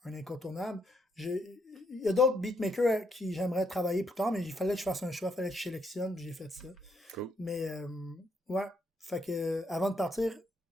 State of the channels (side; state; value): both; normal; correlation 0.76